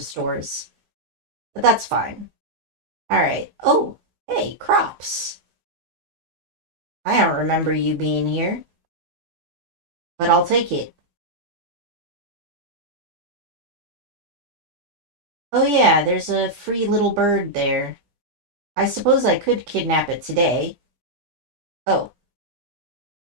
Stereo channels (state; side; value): late; left; 16 ms